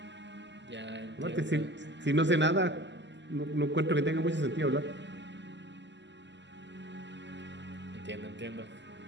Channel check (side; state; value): left; late; 0.52 ms